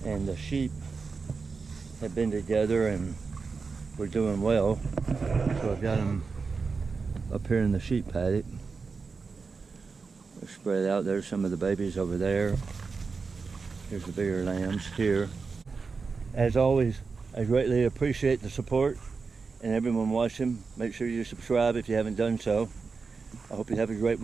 and the sheep have been together and we're doing well. So I've got them up here in the sheep paddock. They're spread out. There's some of the babies over there. Here's the bigger lambs here. As always, I greatly appreciate the support and everyone watching. Make sure you subscribe if you haven't done so. I hope you have a great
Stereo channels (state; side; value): quieter; left; 4.7 dB